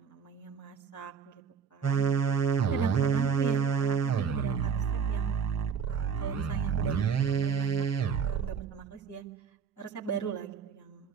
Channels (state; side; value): quieter; left; 6.4 dB